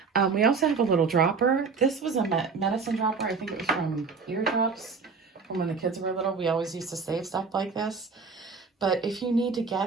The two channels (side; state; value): left; quieter; 5.0 dB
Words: We also have a little dropper. This was a medicine dropper. I think it was from Eardrops from when the kids were little. We always used to save stuff like this. But if you need to